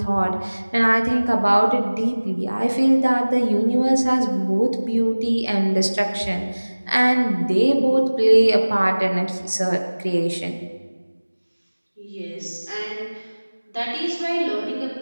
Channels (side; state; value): both; inverted; correlation -1.00